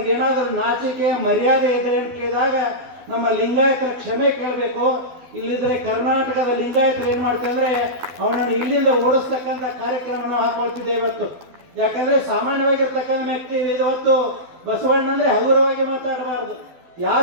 ನಾಚಿಕೆ ಮರ್ಯಾದೆ ಇದೆ ಅಂತ ಕೇಳಿದಾಗ ನಮ್ಮ ಲಿಂಗಾಯತರ ಕ್ಷಮೆ ಕೇಳಬೇಕು. ಇಲ್ಲಿದ್ರೆ ಕರ್ನಾಟಕದ ಲಿಂಗಾಯತರು ಏನು ಮಾಡ್ತಾರೆ ಅಂದರೆ ಅವನನ್ನು ಇಲ್ಲಿಂದ ಓಡಿಸ್ತಕ್ಕಂಥ ಕಾರ್ಯಕ್ರಮವನ್ನು ಹಾಕೊಳ್ತಿದ್ದೇವೆ ಇವತ್ತು. ಯಾಕಂದರೆ ಸಾಮಾನ್ಯವಾಗಿರ್ತಕ್ಕಂಥ ವ್ಯಕ್ತಿ ಇವತ್ತು ಬಸವಣ್ಣ ಅಂದರೆ ಹಗುರವಾಗಿ ಮಾತಾಡಬಾರ್ದು.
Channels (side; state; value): left; late; 12 ms